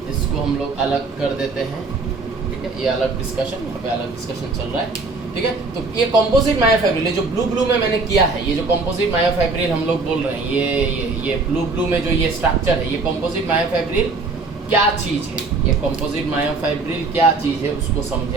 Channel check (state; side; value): quieter; left; 3.8 dB